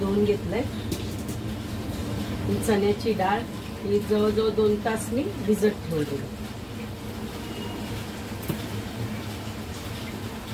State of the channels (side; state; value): both; identical; correlation 1.00